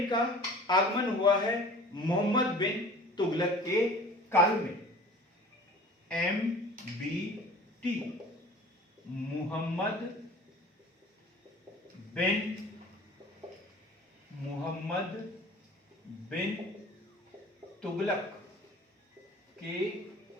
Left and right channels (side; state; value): both; normal; correlation 0.44